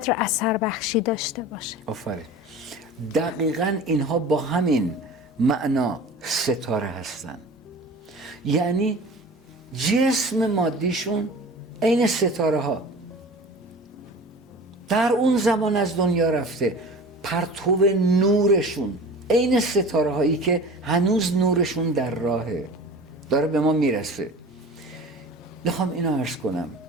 اثر بخشی داشته باشه. آفرین. دقیقاً اینها با همین معنا ستاره هستن. یعنی جسم مادیشون عین ستاره ها در اون زمان از دنیا رفته، پرتو نورشون عین ستاره هایی که هنوز نورشون در راهه، داره به ما میرسه. میخوام اینو عرض کنم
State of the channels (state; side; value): normal; both; correlation 0.39